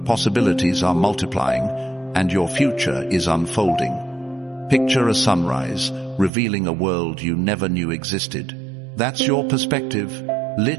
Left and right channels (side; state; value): left; drops out; at 6.3 s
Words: possibilities are multiplying, and your future is unfolding. Picture a sunrise, revealing a world you never knew existed. That's your perspective,